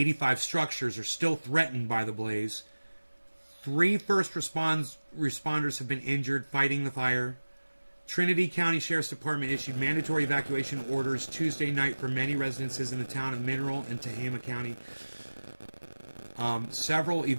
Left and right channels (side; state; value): both; inverted; correlation -1.00